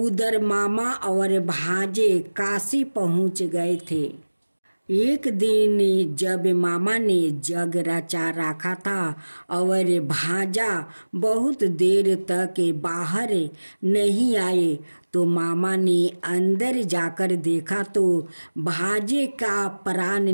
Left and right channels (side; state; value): both; inverted; correlation -1.00